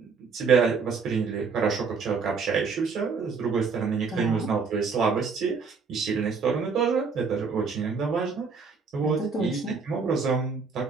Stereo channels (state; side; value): quieter; left; 5.1 dB